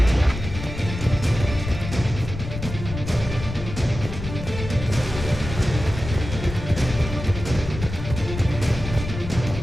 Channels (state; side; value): noise; left; rumble, 8 dB below the sound